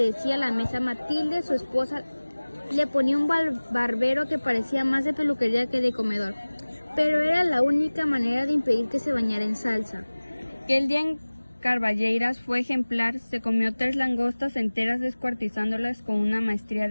la mesa. Matilde, su esposa, le ponía un barbero que parecía más de peluquería que de comedor, pero era la única manera de impedir que se bañara en salsa. Aquel día en Carballeiras fue ejemplar, se comió 3 langostas enteras descuartizándolas con una maestría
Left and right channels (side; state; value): both; inverted; correlation -1.00